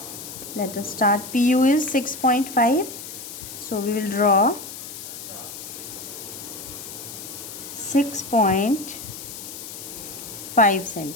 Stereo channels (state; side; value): noise; left; hiss, 11 dB below the sound